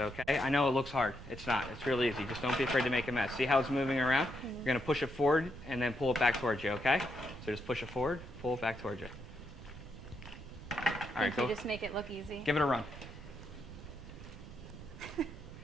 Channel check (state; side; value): noise; right; rumble, 14 dB below the sound